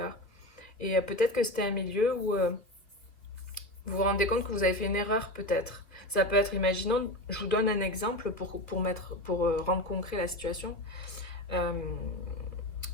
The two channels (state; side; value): late; right; 2.5 ms